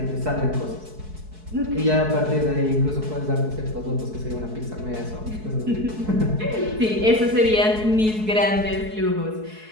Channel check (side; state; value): left; late; 4.6 ms